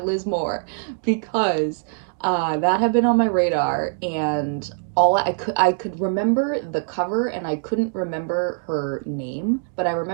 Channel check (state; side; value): silent; left; digital silence